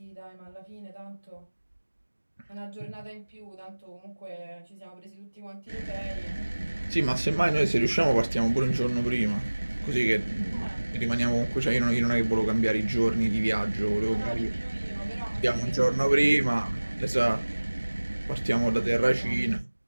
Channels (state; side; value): inverted; both; correlation -1.00